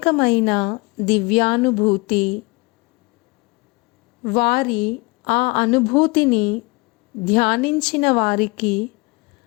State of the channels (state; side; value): quieter; right; 26.4 dB